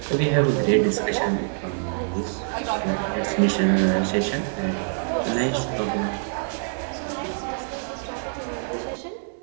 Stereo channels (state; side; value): silent; left; digital silence